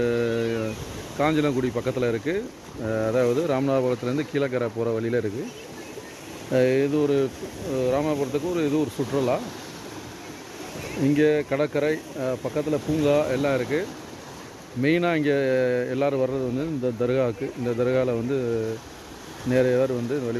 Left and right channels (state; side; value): identical; both; correlation 1.00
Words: காஞ்சனங்குடி பக்கத்தில் இருக்குது. அதாவது ராமநாதபுரத்துலேருந்து கீழக்கரை போகிற வழியில் இருக்குது. இது ஒரு ராமநாதபுரத்துக்கு ஒரு சுற்றுலா. இங்கே கடற்கரை பக்கத்தில் பூங்கா எல்லாம் இருக்குது. மெயினாக இங்கே எல்லோரும் வர்றது வந்து இந்த தர்காவுக்கு. இந்த தர்காவில் வந்து நிறைய பேர் வந்து